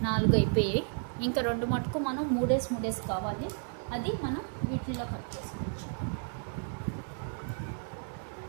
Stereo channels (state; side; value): silent; left; 56 dB below the other